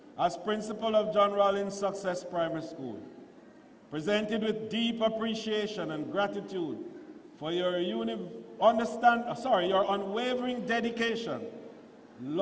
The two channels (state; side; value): identical; both; correlation 1.00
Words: as principal of John Rollins Success Primary School, presented with deep appreciation and gratitude for your unwavering dedication,